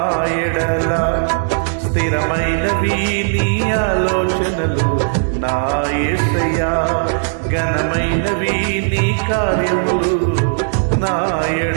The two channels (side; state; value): left; silent; digital silence